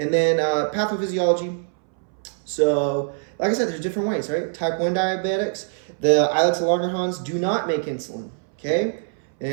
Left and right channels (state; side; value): silent; left; 62 dB below the other